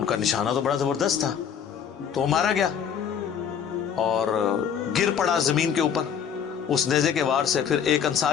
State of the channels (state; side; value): quieter; right; 7.9 dB